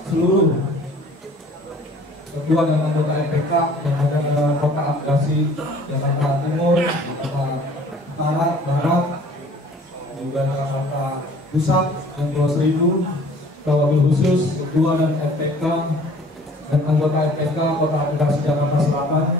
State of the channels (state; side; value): normal; both; correlation 0.51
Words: seluruh ketua dan anggota FPK yang ada di Kota Administrasi Jakarta Timur, Jakarta Utara, Barat, juga Jakarta Pusat dan Pulau Seribu, wabil khusus ketua dan FPK dan anggota FPK Kota Administrasi Jakarta Selatan,